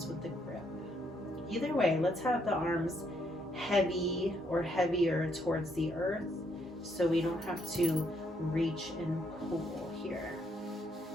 with the grip. Either way, let's have the arms heavy or heavier towards the earth so we don't have to reach and pull here.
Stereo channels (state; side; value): normal; both; correlation 0.73